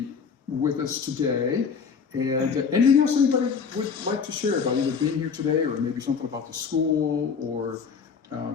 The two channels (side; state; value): right; quieter; 6.0 dB